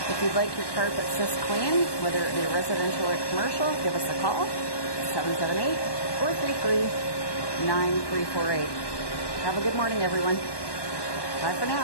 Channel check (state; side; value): late; right; 1.1 ms